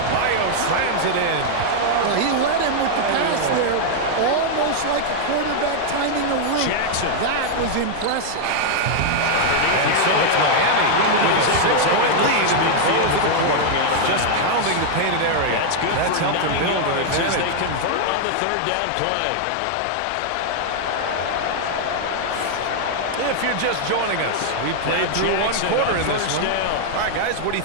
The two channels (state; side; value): different; both; correlation -0.01